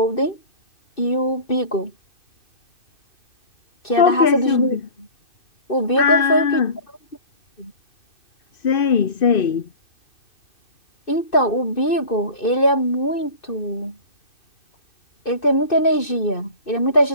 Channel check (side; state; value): right; late; 2.6 ms